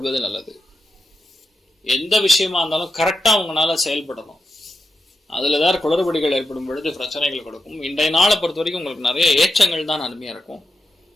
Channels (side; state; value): both; normal; correlation 0.87